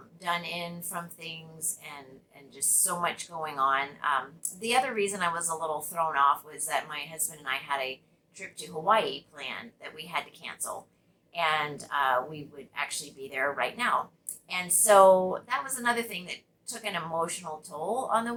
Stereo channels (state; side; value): identical; both; correlation 1.00